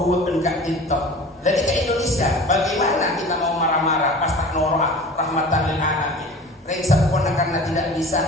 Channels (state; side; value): normal; both; correlation 0.40